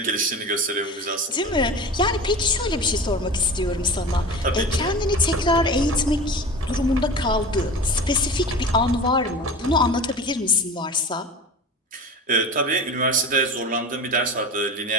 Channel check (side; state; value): both; normal; correlation 0.33